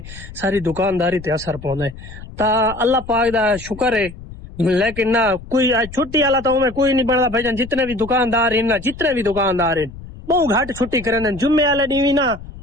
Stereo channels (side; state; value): left; noise; rumble, 15 dB below the sound